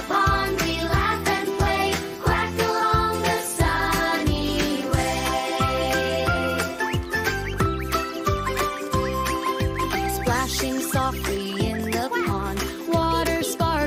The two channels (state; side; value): identical; both; correlation 1.00